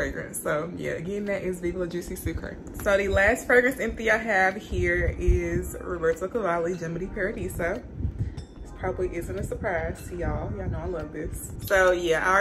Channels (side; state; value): both; identical; correlation 1.00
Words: So yeah, again, that is Viva La Juicy Sucre. So the last fragrance empty I have here is Roberto Cavalli Gem di Paradiso. This probably isn't a surprise to y'all. Y'all know I love this. So yeah, I